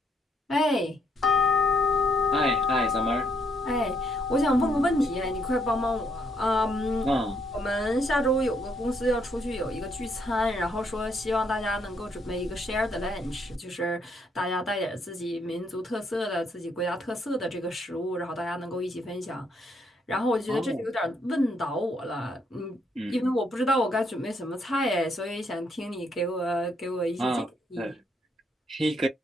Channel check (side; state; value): both; normal; correlation 0.73